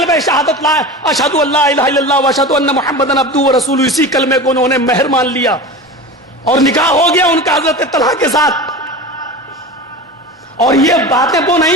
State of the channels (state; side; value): normal; both; correlation 0.30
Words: شہادت لا اشہد ان لا الہ الا اللہ واشہد ان محمدن عبدہ ورسولہ, اسی کلمے کو انہوں نے مہر مان لیا اور نکاح ہو گیا ان کا حضرت طلحہ کے ساتھ. اور یہ باتیں وہ